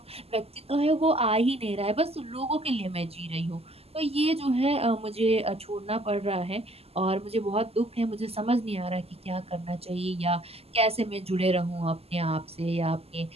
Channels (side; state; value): left; late; 0.29 ms